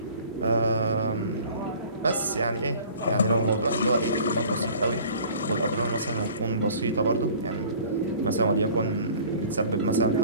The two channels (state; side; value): inverted; both; correlation -0.48